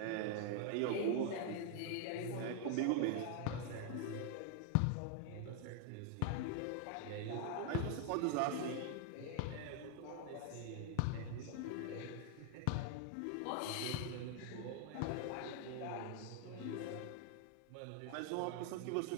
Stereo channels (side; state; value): both; different; correlation 0.00